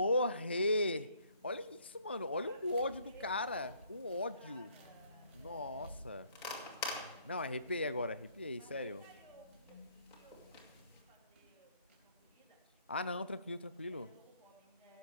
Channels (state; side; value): inverted; both; correlation -0.64